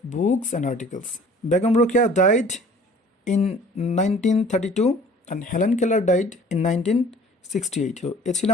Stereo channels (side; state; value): both; normal; correlation 0.50